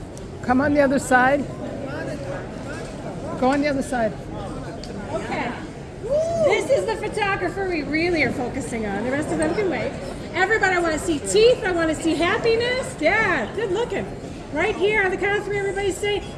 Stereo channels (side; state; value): both; identical; correlation 1.00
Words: come on the other side? Go on the other side. Okay. This is the photographer we really are focusing on. The rest of them can wait. Everybody, I want to see teeth. I want to see happiness. Yeah, good looking. Right here on the count of three, everybody say